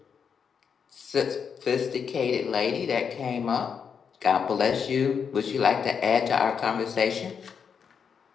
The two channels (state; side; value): quieter; right; 6.7 dB